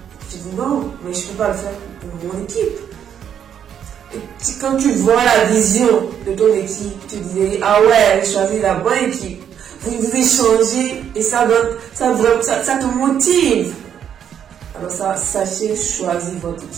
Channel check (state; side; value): quieter; left; 8.9 dB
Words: tu dis non, mais je ne peux pas le faire pour mon équipe. Et quand tu vois la vision de ton équipe, tu dis ah ouais, j'ai choisi la bonne équipe. Vous échangez et ça te motive. Alors sachez choisir votre